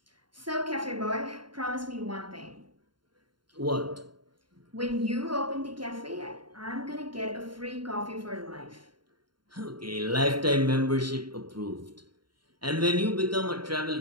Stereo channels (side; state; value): left; late; 0.72 ms